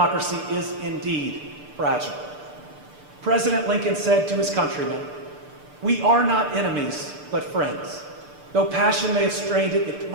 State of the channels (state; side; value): late; left; 6.8 ms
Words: is indeed fragile. President Lincoln said to his countrymen, "We are not enemies, but friends. Though passion may have strained it, it